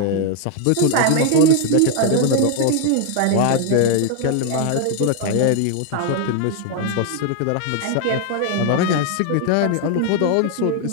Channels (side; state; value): both; different; correlation 0.00